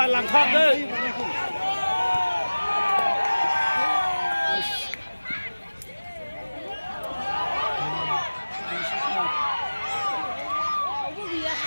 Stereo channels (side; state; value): both; inverted; correlation -1.00